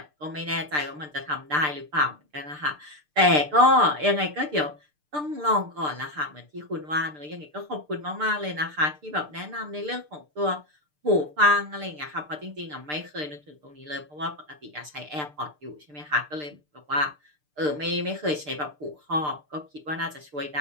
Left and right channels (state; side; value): late; left; 6.7 ms